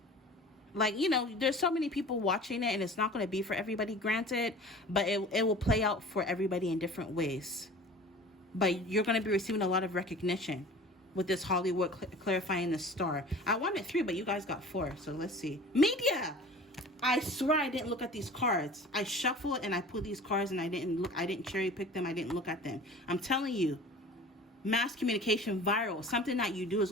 Like, you know, there's so many people watching it, and it's not going to be for everybody, granted, but it will play out for everybody in different ways. But you're going to be receiving a lot of recognition with this Hollywood clarifying the star. I wanted 3, but you guys got 4, so let's see. Media! I swear I didn't look at these cards. I shuffled and I pulled these cards, and I didn't cherry pick them. I didn't look at them. I'm telling you. Mass communication, viral. Something that you do is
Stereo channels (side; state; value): both; normal; correlation 0.42